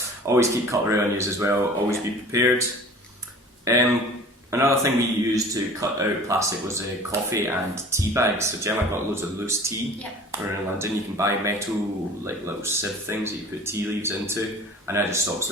always keep cutlery on you as well, always be prepared. Another thing we used to cut out plastic was coffee and tea bags. So Gemma got loads of loose tea. Yep. We're in London, you can buy metal like little sieve things that you put tea leaves into, and that just stops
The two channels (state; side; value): normal; both; correlation 0.44